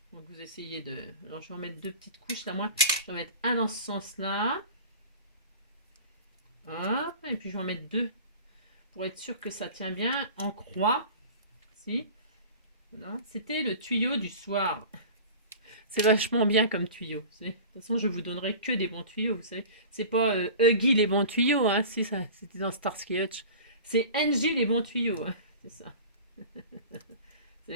Donc vous essayez de... Alors je vais en mettre 2 petites couches, là, moi, je vais en mettre un dans ce sens-là. Hop, et puis je vais en mettre 2 pour être sûr que ça tient bien en croix. Si. Voilà. C'était le tuyau du soir. C'est vachement bien comme tuyau. De toute façon, je vous donnerai que des bons tuyaux. Vous savez, c'est pas Huggy les bons tuyaux. Hein, si ça, c'était dans Starsky Hutch. C'est Angie les bons tuyaux. Hein, c'est ça. C'est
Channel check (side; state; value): both; inverted; correlation -0.38